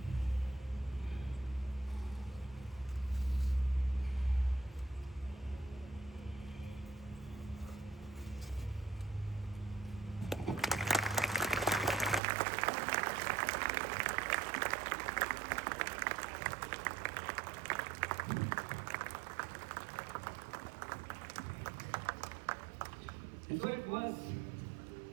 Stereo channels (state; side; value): drops out; left; at 12.2 s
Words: And so it was